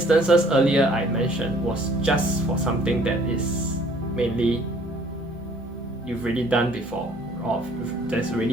earlier I mentioned was just for something that is mainly you've already done before, or that's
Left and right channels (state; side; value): normal; both; correlation 0.58